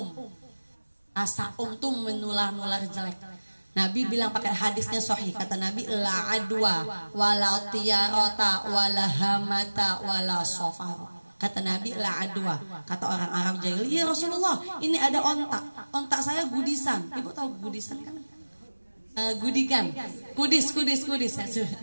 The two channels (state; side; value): inverted; both; correlation -1.00